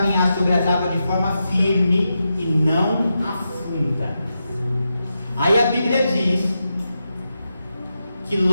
sobre as águas de forma firme e não afunda. Aí a Bíblia diz que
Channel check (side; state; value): both; inverted; correlation -0.88